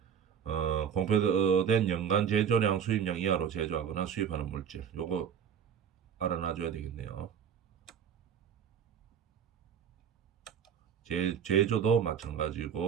공표된 연간 제조량 수입량 이하로 제조하거나 수입하는 물질 요거 알아놔줘야 되겠네요. 제조도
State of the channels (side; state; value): left; quieter; 7.8 dB